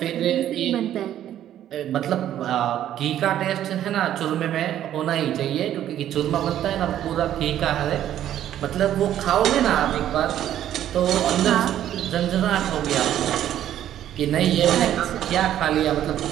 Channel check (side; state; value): left; quieter; 11.5 dB